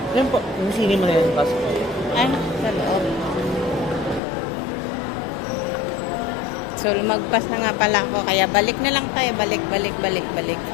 Yan po, yung sini mo na yan. Pasok ko. Ay, sa loob. So, lumagpas na nga pala ako. Kaya balik na lang tayo. Balik.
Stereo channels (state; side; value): drops out; right; at 4.2 s